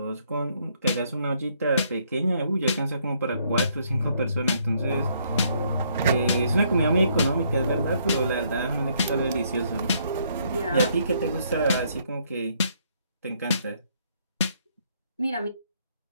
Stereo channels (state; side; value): inverted; both; correlation -0.70